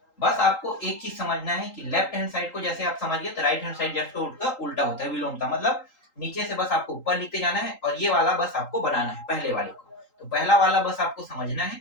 बस आपको एक चीज समझना है कि लेफ्ट हैंड साइड को जैसे आप समझ गए तो राइट हैंड साइड जैसे उल्टा होता है, विलोमता, मतलब नीचे से बस आपको ऊपर लिखते जाना है और ये वाला बस आपको बनाना है पहले वाले को। तो पहला वाला बस आपको समझना है,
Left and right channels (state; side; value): late; right; 3.8 ms